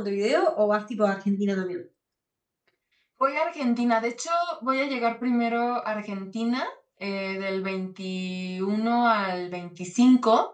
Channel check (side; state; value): both; identical; correlation 1.00